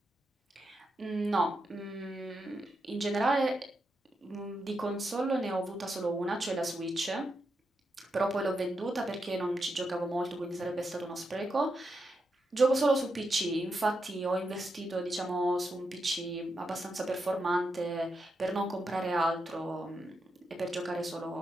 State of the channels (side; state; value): both; normal; correlation 0.85